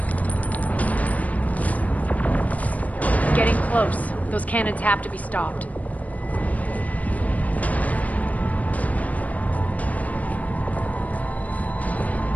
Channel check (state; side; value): late; right; 0.071 ms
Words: Getting close. Those cannons have to be stopped.